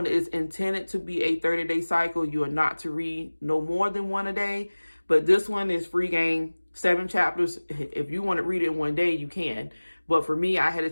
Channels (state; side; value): inverted; both; correlation -1.00